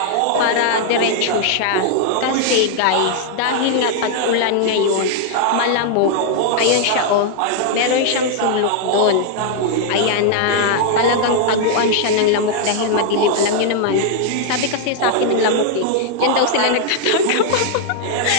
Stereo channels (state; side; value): different; both; correlation -0.01